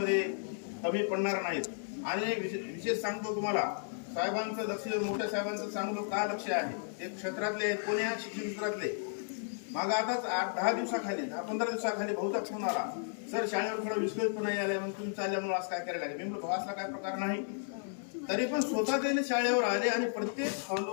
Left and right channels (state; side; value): silent; right; digital silence